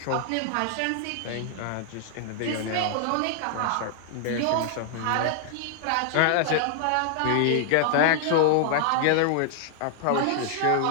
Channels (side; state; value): both; different; correlation -0.01